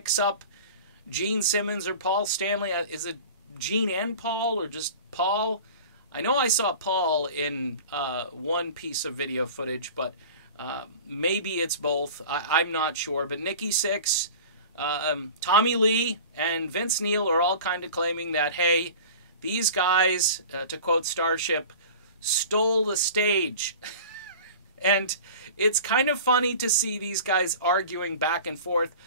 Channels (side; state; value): both; inverted; correlation -0.39